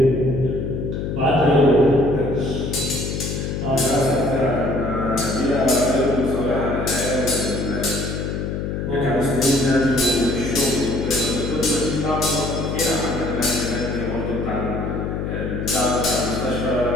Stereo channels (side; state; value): left; noise; hum, 3 dB below the sound